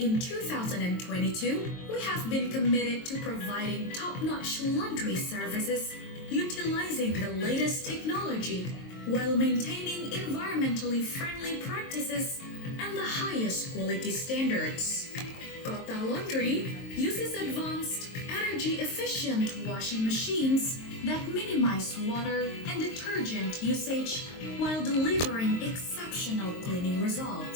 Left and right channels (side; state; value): right; late; 23 ms